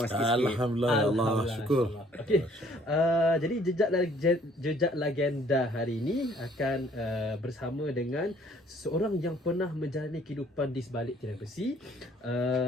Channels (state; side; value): normal; both; correlation 0.59